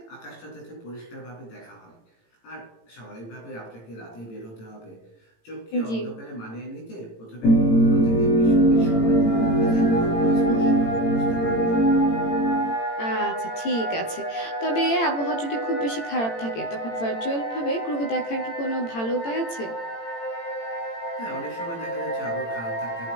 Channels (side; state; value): right; late; 18 ms